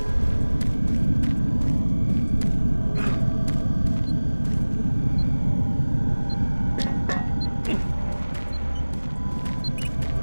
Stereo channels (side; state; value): both; inverted; correlation -1.00